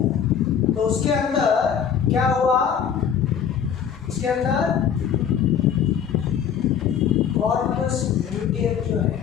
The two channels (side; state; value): right; quieter; 8.1 dB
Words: तो उसके अंदर क्या हुआ, उसके अंदर कॉर्पस ल्यूटियम जो है